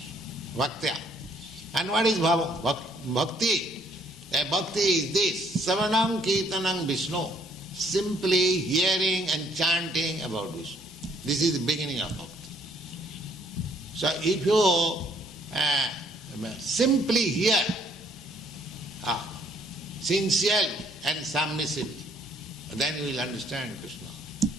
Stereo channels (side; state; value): both; normal; correlation 0.66